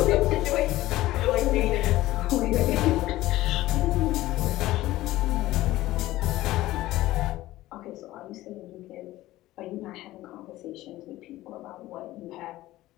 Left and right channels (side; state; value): right; quieter; 16.4 dB